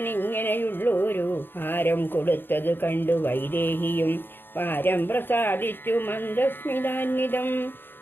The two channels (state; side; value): late; right; 0.099 ms